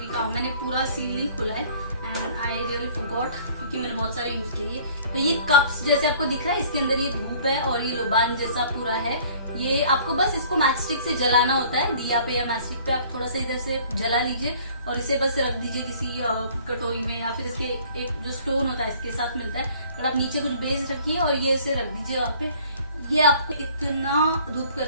काम, मैंने पूरा सील नहीं खुला है एंड आई रियली फॉरगॉट, क्योंकि मैंने बहुत सारे यूज किए। तो ये कप्स जैसे आपको दिख रहा है, इसके अंदर ये धूप है और ये लोबान जैसा पूरा है। ये आपको बस इसको मैच स्टिक से जलाना होता है, दिया पे या मैच स्टिक पे आप थोड़ा सा इधर से जला लीजिए और इसे बस रख दीजिए किसी कटोरी में, या फिर इसके एक जो स्टोन होता है इसके साथ मिलता है, पर आप नीचे कुछ बेस रखिए और ये इसे रख दीजिए वहाँ पे। ये आपको इतना धूप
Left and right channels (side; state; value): both; inverted; correlation -0.53